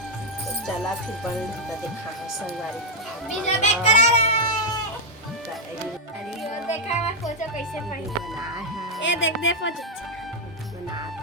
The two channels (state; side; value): normal; both; correlation -0.01